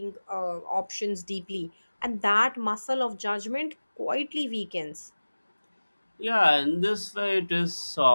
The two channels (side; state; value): both; inverted; correlation -1.00